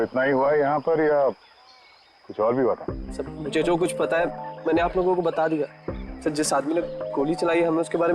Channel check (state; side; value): identical; both; correlation 1.00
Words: ही हुआ है यहाँ पर या कुछ और भी हुआ था? सर मुझे जो कुछ पता है मैंने आप लोगों को बता दिया। सर जिस आदमी ने गोली चलाई है हमें उसके बारे